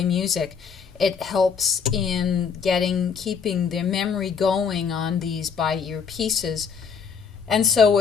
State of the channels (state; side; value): quieter; right; 6.4 dB